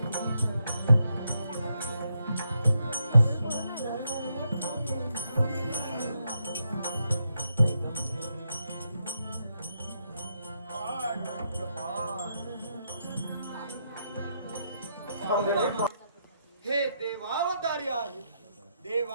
हे देवावतारी आहे,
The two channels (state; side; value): inverted; both; correlation -0.80